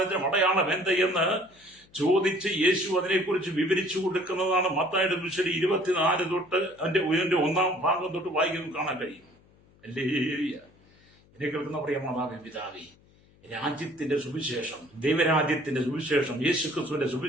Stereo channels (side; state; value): left; noise; hum, 30 dB below the sound